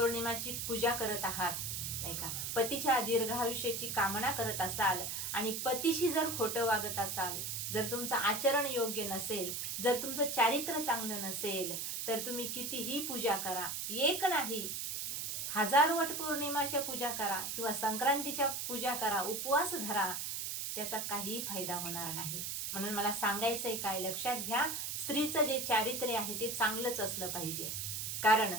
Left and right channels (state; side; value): noise; right; hiss, 3 dB below the sound